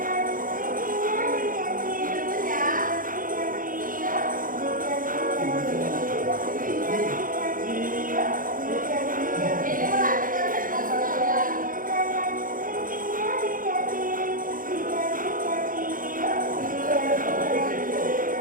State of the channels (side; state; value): left; late; 0.40 ms